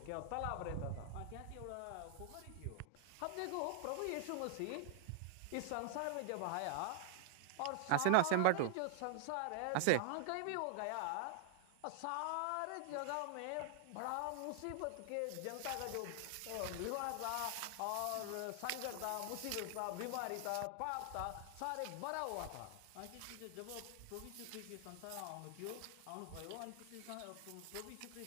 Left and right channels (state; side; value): different; both; correlation 0.00